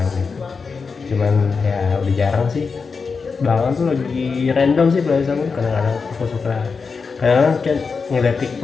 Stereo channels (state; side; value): quieter; right; 5.0 dB